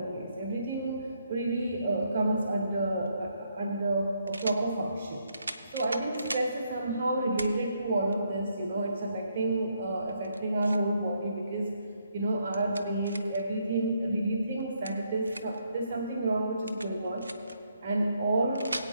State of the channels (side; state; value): both; inverted; correlation -0.75